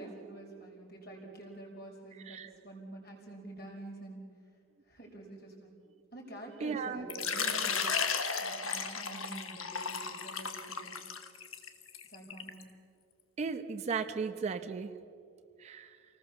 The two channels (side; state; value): both; normal; correlation 0.10